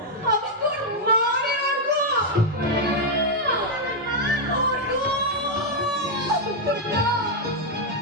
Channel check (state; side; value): normal; both; correlation -0.01